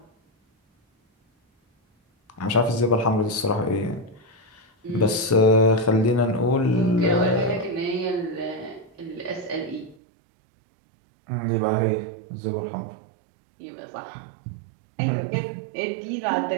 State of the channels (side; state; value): left; drops out; at 10.0 s